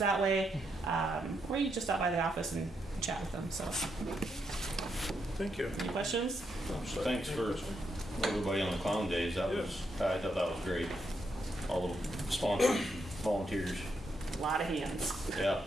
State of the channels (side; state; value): both; normal; correlation 0.80